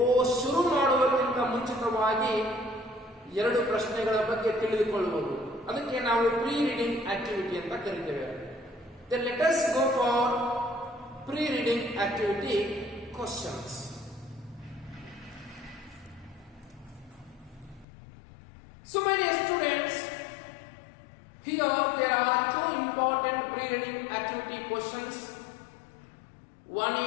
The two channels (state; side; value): drops out; right; at 17.9 s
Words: ಶುರು ಮಾಡುವುದಕ್ಕಿಂತ ಮುಂಚಿತವಾಗಿ 2 ಪ್ರಶ್ನೆಗಳ ಬಗ್ಗೆ ತಿಳಿದುಕೊಳ್ಳುವುದು. ಅದಕ್ಕೆ ನಾವು ಪ್ರೀ ರೀಡಿಂಗ್ ಆಕ್ಟಿವಿಟಿ ಅಂತ ಕರಿತೇವೆ. Then let us go for pre-reading activity questions. So my dear students, here there are 2 important pre-reading activity questions. One